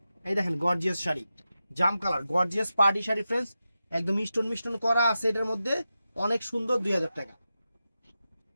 এই দেখেন গর্জিয়াস শাড়ি, জাম colour, gorgeous party sari friends, একদম মিষ্টন করা আছে এটার মধ্যে, অনেক সুন্দর। 2000 টাকা।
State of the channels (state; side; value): inverted; both; correlation -0.91